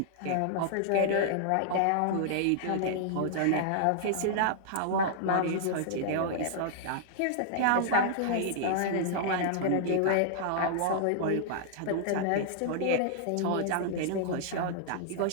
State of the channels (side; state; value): both; different; correlation -0.01